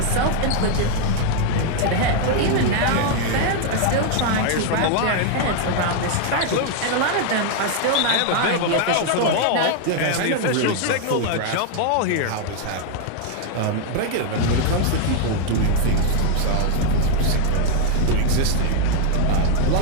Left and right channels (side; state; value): both; different; correlation 0.00